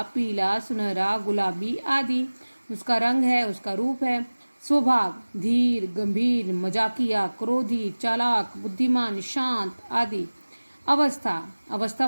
पीला, सुनहरा, गुलाबी आदि उसका रंग है, उसका रूप है। स्वभाव, धीर, गंभीर, मजाकिया, क्रोधी, चालाक, बुद्धिमान, शांत आदि। अवस्था, अवस्था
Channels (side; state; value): both; inverted; correlation -1.00